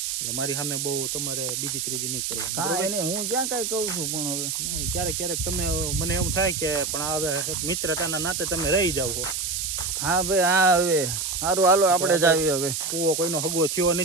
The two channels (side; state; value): right; noise; hiss, 2 dB below the sound